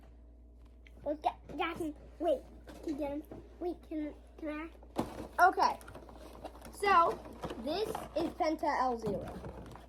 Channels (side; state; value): both; identical; correlation 1.00